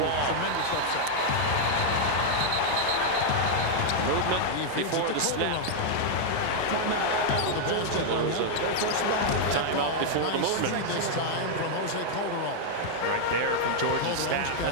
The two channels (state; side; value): different; both; correlation -0.01